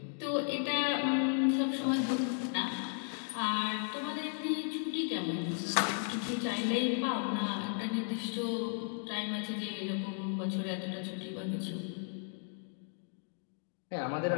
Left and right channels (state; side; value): silent; right; 54 dB below the other